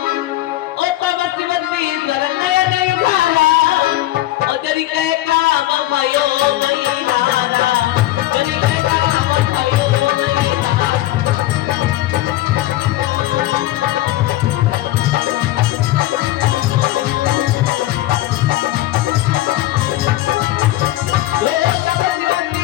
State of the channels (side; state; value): right; quieter; 15.8 dB